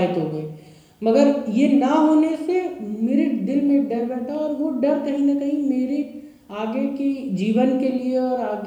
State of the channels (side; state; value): both; identical; correlation 1.00